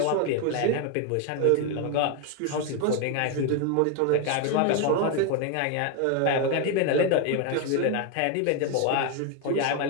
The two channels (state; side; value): different; both; correlation 0.01